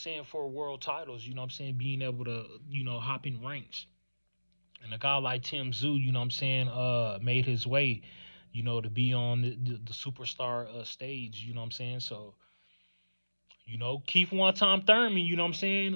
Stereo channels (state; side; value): inverted; both; correlation -1.00